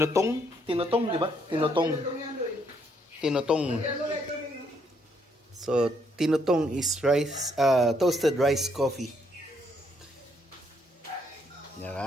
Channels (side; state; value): both; normal; correlation 0.72